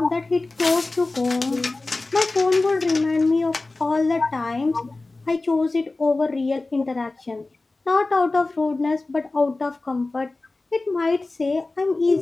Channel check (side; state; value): right; quieter; 3.3 dB